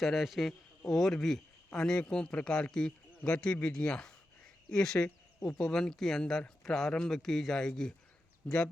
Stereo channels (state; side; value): normal; both; correlation 0.89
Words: से और भी अनेकों प्रकार की गतिविधियां इस उपवन के अंदर प्रारंभ की जाएगी।